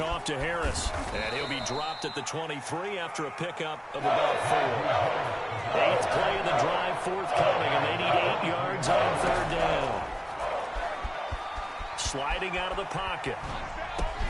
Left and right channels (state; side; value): identical; both; correlation 1.00